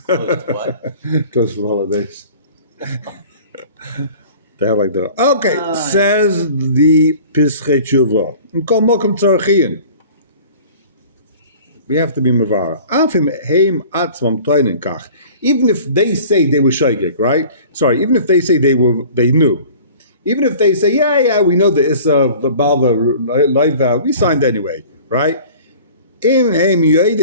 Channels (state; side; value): inverted; both; correlation -0.45